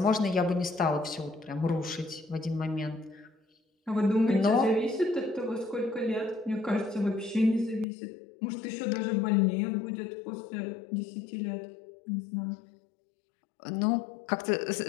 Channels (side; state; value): right; drops out; at 7.9 s